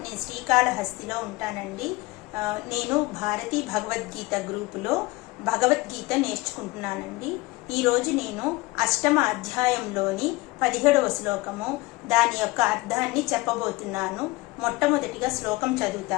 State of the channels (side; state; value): right; quieter; 21.9 dB